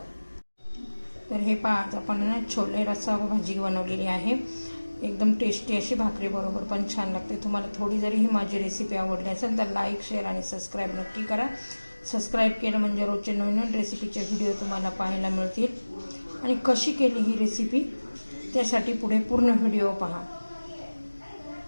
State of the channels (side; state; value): both; inverted; correlation -1.00